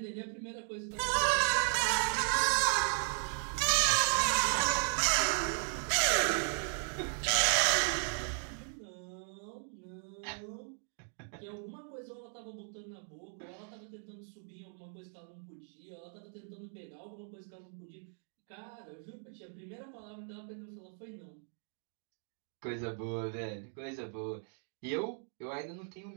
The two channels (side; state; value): left; silent; 54 dB below the other